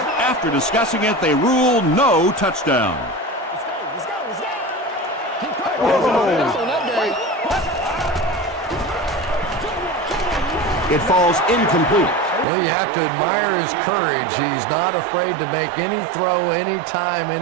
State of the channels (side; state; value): left; drops out; at 12.5 s